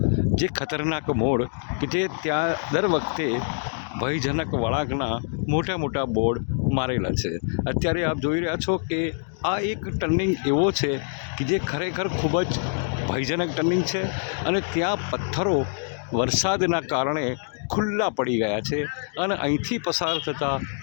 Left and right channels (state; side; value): silent; right; 62 dB below the other